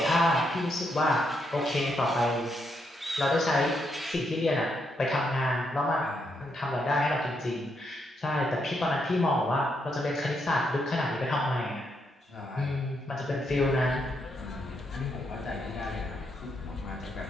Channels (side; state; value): both; normal; correlation 0.78